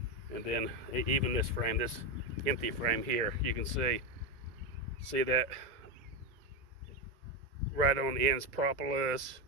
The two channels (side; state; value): left; late; 2.0 ms